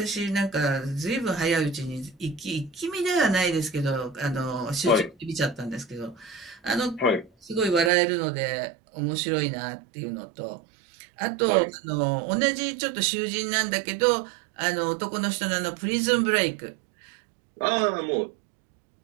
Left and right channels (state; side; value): drops out; left; at 7.9 s